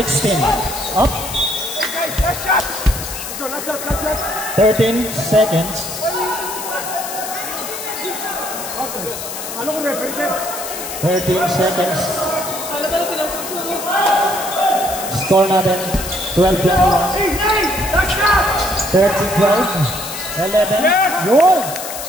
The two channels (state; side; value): noise; left; hiss, 8 dB below the sound